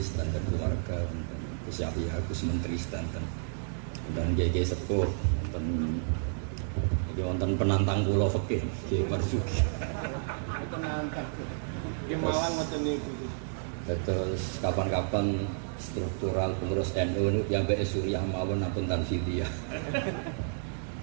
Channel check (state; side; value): silent; left; digital silence